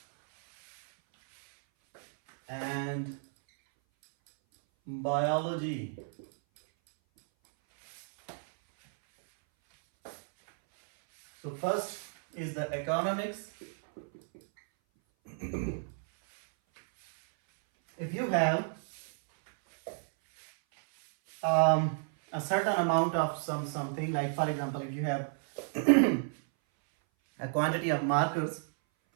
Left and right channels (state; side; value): silent; left; 57 dB below the other